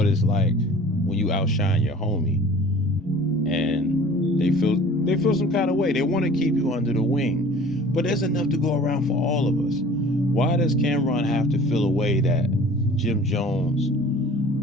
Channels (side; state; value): both; normal; correlation 0.46